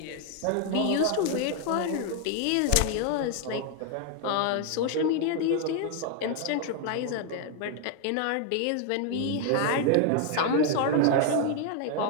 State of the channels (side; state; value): both; different; correlation 0.00